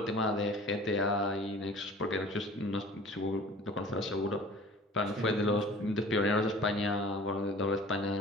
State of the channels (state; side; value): normal; both; correlation 0.45